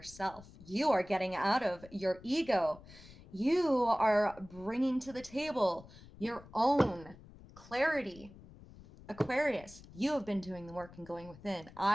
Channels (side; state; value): left; noise; rumble, 20 dB below the sound